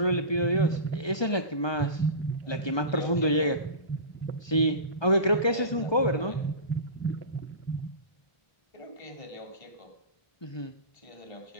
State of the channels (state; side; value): late; right; 1.2 ms